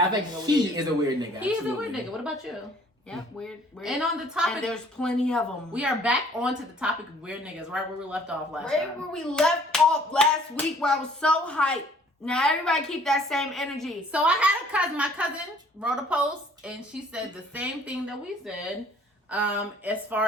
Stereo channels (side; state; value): both; normal; correlation 0.57